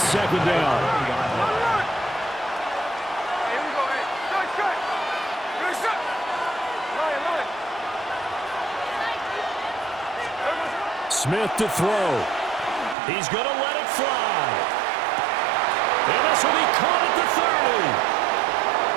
down. Smith to throw. He's going to let it fly. And this will be caught at the 30.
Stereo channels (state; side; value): drops out; left; at 13.0 s